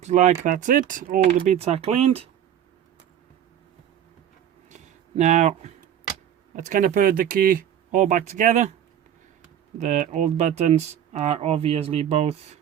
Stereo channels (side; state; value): left; quieter; 10.1 dB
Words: like that's it. All the bits are cleaned. Now, let's kind of put the key all back together. The old buttons are obviously both